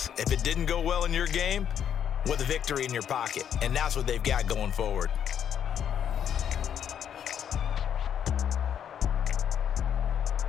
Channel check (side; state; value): right; quieter; 9.0 dB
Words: If it didn't go well in your game, with a victory in your pocket. And that's what they've got going forward.